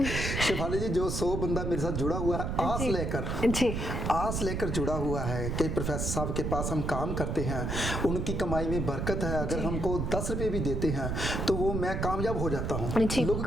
शेफाली जी, जो 100 बंदा मेरे साथ जुड़ा हुआ है आस लेकर जुड़ा हुआ है कि प्रोफेसर साहब के पास हम काम करते हैं, उनकी कमाई में बरकत है, अगर हमको 10 रुपये भी देते हैं तो वो मैं कामयाब हो जाता हूँ। लोगों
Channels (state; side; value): noise; right; rumble, 1 dB below the sound